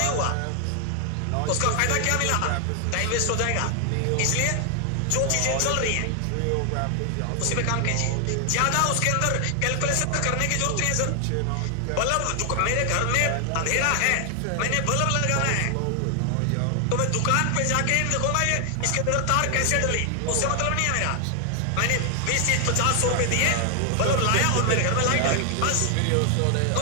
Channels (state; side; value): different; both; correlation 0.00